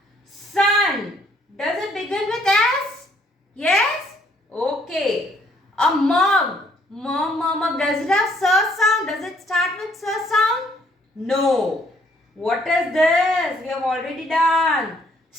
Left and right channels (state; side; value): normal; both; correlation 0.65